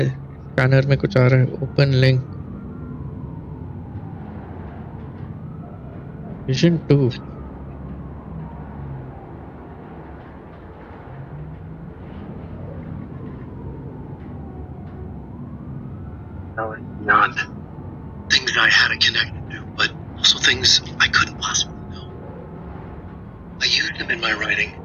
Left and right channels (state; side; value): identical; both; correlation 1.00